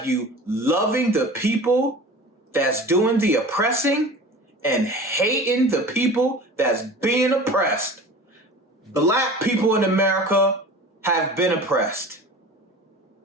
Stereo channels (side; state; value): both; normal; correlation 0.38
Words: you loving the people that's doing the oppressing and hating the people that's being oppressed. Black people in America have been oppressed,